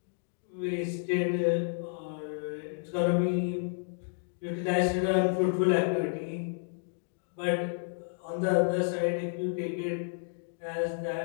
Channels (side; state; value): right; silent; digital silence